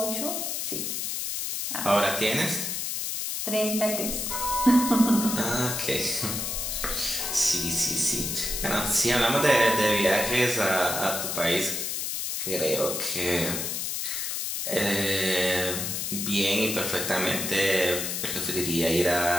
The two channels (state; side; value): noise; left; hiss, 2 dB below the sound